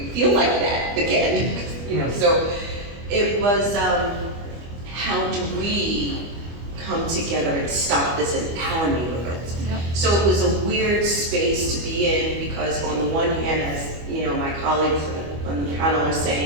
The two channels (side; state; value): left; late; 25 ms